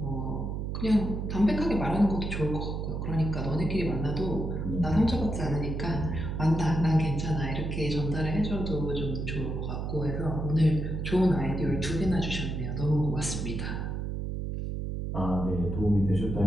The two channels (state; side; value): noise; right; hum, 3 dB below the sound